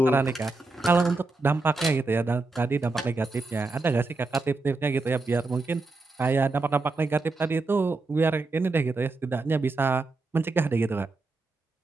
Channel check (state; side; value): quieter; left; 3.4 dB